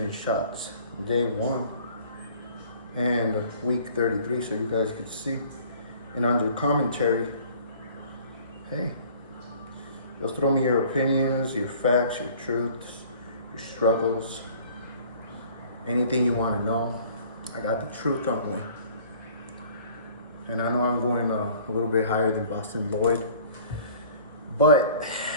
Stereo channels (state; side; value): inverted; both; correlation -0.51